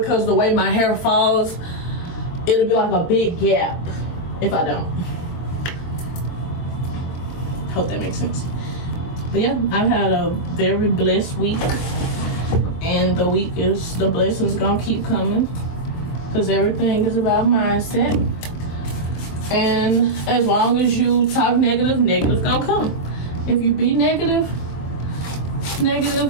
the way my hair falls, it'll be like a big gap if I don't. Hope that makes sense. But yeah, I've had a very blessed week, and the blessings gonna keep coming, because everything is about mindset. And as long as you talk negative, negative gonna come. If you be negative,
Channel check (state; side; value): late; right; 23 ms